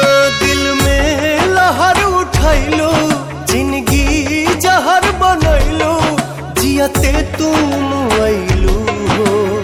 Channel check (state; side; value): identical; both; correlation 1.00